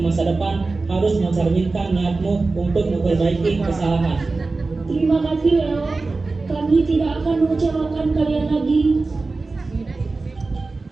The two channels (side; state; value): left; quieter; 3.7 dB